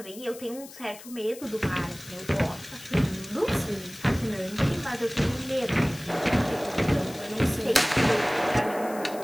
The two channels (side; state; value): left; noise; hiss, 17 dB below the sound